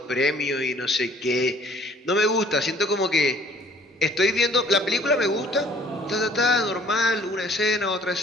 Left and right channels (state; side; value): normal; both; correlation 0.56